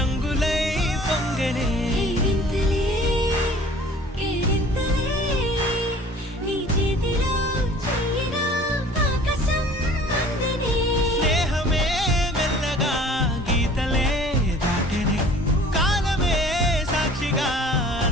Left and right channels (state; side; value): normal; both; correlation 0.49